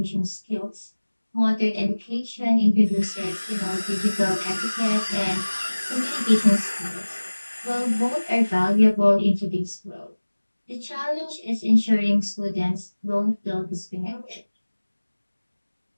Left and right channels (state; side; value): inverted; both; correlation -1.00